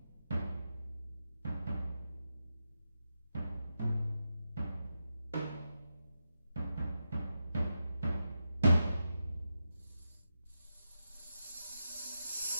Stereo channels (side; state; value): both; inverted; correlation -0.88